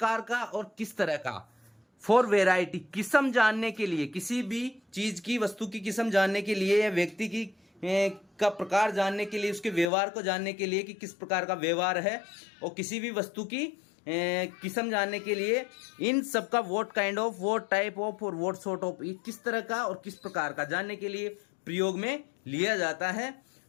का और किस तरह का। फॉर वेराइटी, किस्म जानने के लिए, किसी भी चीज की, वस्तु की किस्म जानने के लिए या व्यक्ति की का प्रकार जानने के लिए, उसके व्यवहार को जानने के लिए कि किस प्रकार का व्यवहार है, और किसी भी वस्तु की किस्म जानने के लिए इन सब का what kind of, what type of और व्हाट सॉर्ट ऑफ, किस तरह का और किस प्रकार का जानने के लिए प्रयोग में लिया जाता है।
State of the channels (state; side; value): drops out; right; at 9.9 s